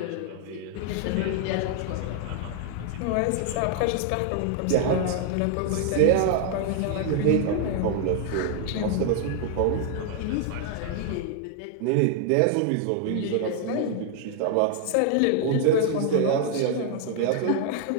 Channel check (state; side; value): different; both; correlation 0.00